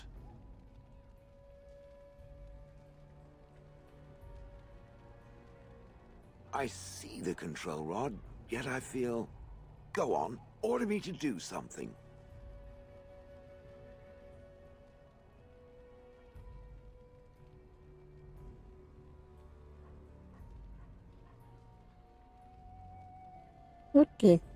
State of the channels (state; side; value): identical; both; correlation 1.00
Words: I see the control rod, yet I feel... Go on, order me to do something. Okay.